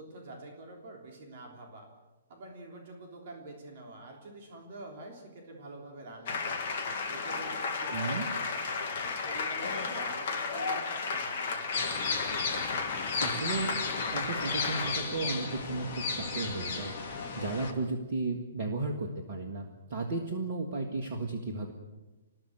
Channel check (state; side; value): inverted; both; correlation -0.55